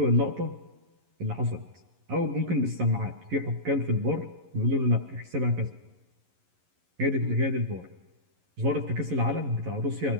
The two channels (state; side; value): late; left; 11 ms